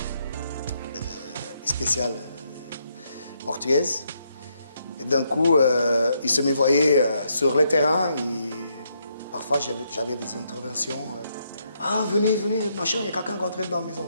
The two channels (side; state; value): both; inverted; correlation -0.77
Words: spéciale portugaise. Et d'un coup, ils se me voyaient sur le terrain et parfois j'avais des interventions. Ah, venez, machin, il y a quelqu'un qui est entré dans la